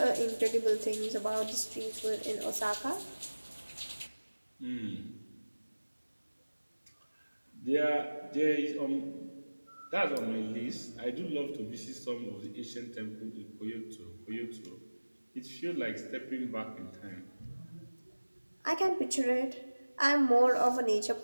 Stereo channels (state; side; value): inverted; both; correlation -1.00